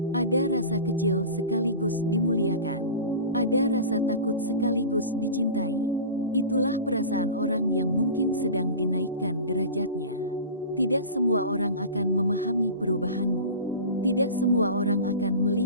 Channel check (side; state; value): both; inverted; correlation -0.33